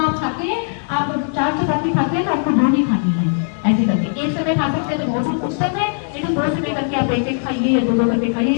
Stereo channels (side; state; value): right; silent; digital silence